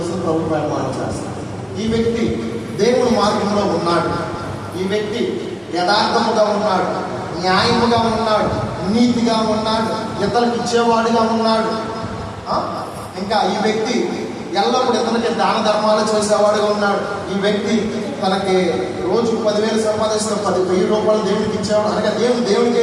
ప్రభు ప్రమాణం చేస్తాను. ఈ వ్యక్తి దేవుని మార్గంలో ఉన్నాడు. ఈ వ్యక్తి యథార్థముగా ఉన్నాడు, న్యాయముగా ఉన్నాడు, నీతిగా ఉన్నాడు, ఇతరులకు ఇచ్చేవాడిగా ఉన్నాడు. ఇంకా ఈ వ్యక్తి ఎల్లప్పుడు ఇతనికి దాన ధర్మాలు చేసేవాడుగా ఉన్నాడు. ఈ వ్యక్తి తనకి రోజు 10,000 సంపాదిస్తే 10,000 రూపాయలు దేవుడికి ఇచ్చేవాడు, అనగా దేవుడికే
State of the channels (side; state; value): both; identical; correlation 1.00